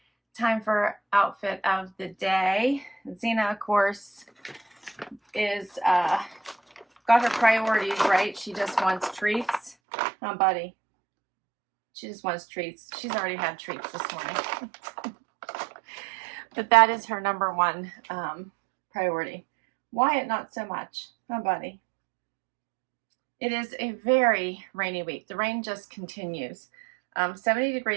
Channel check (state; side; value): drops out; left; at 9.8 s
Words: Time for outfit of the day. Xena, of course, is got her priorities right. She just wants treats. Oh, buddy. She just wants treats. She's already had treats this morning. But that is her number one priority. Wyatt, not so much. Oh, buddy. It is a very rainy week. The rain just continues. 70